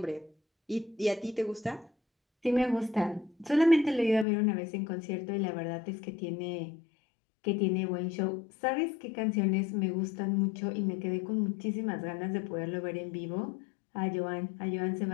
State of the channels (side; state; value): right; drops out; at 4.2 s